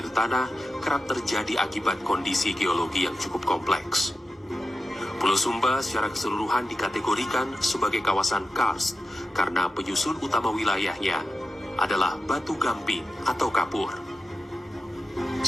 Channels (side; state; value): both; normal; correlation 0.91